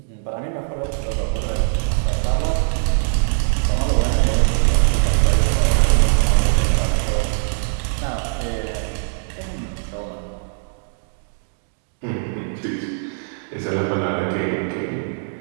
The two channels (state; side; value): silent; left; digital silence